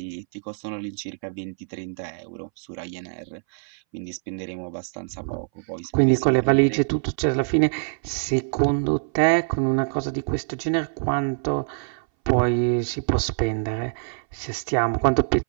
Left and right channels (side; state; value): left; silent; 61 dB below the other